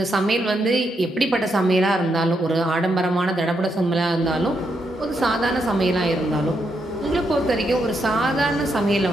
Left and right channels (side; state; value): both; normal; correlation 0.80